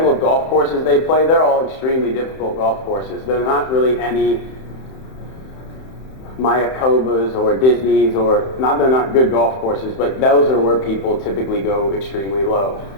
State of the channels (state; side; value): late; right; 31 ms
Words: of golf courses they play, they're all extremely difficult golf courses. They're not really any Mayakobas or Disneys, they're not good golf courses, but those are where people typically go extremely low.